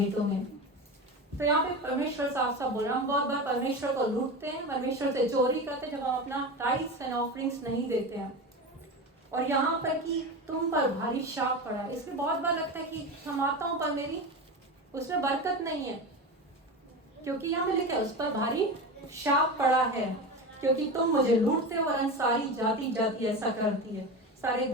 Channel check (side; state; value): both; normal; correlation 0.25